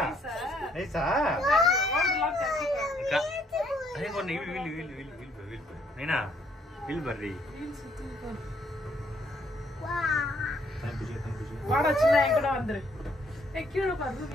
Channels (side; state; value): both; normal; correlation 0.67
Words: நைஸா நைனா வில் பர்ரி வாடா சின்ன என் கூட வந்துரு. கீழே பாரு